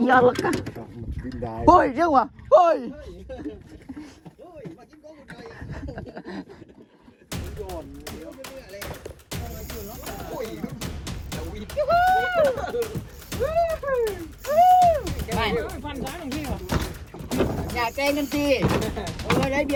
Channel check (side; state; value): both; identical; correlation 1.00